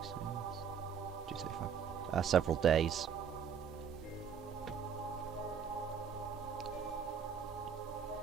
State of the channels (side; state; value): left; quieter; 7.3 dB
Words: 235. Several days.